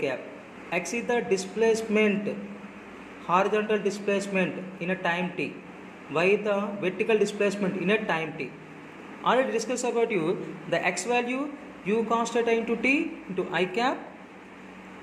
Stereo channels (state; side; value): identical; both; correlation 1.00